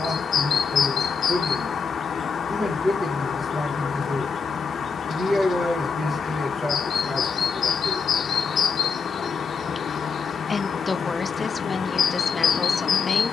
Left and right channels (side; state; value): right; quieter; 5.3 dB